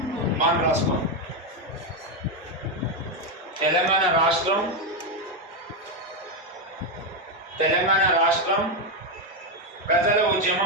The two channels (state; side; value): normal; both; correlation 0.06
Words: మనం రాసుకో. తెలంగాణ రాష్ట్రం ప్రజల